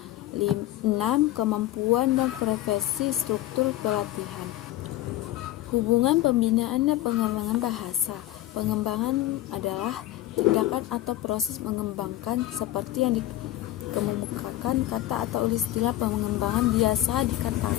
6, kemampuan dan preferensi struktur pelatihan. Hubungan pembinaan dan pengembangan bahasa. Pengembangan adalah tindakan atau proses mengembangkan seperti yang dikemukakan kata atau istilah pengembangan biasa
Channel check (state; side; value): quieter; right; 14.9 dB